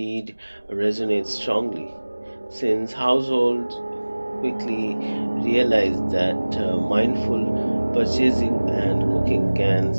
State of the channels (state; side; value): inverted; both; correlation -1.00